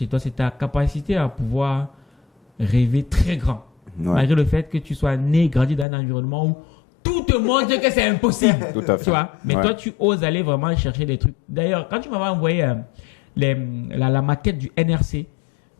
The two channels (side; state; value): right; drops out; at 5.9 s